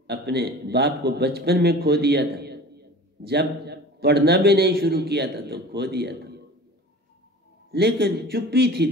अपने बाप को बचपन में खो दिया था, जब पढ़ना भी नहीं शुरू किया था तो खो दिया था। लेकिन चुप्पी थी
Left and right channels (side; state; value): both; normal; correlation 0.40